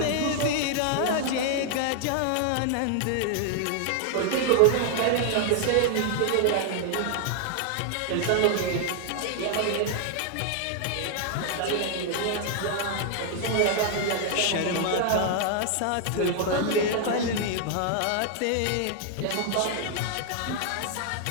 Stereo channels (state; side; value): different; both; correlation 0.00